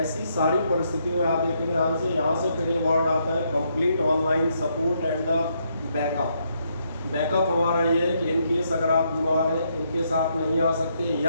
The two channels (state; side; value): inverted; both; correlation -0.76